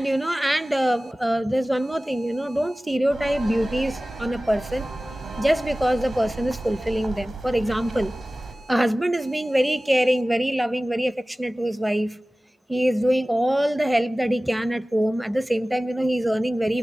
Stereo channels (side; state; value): both; normal; correlation 0.97